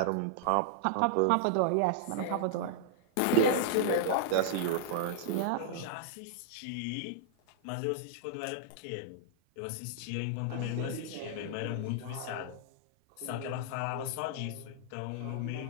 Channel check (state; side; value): different; both; correlation -0.01